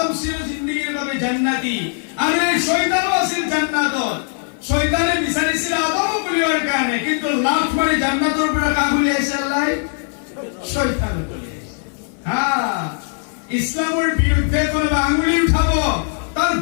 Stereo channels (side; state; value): right; silent; 56 dB below the other